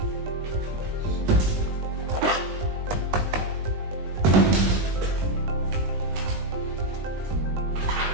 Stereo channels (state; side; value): late; left; 20 ms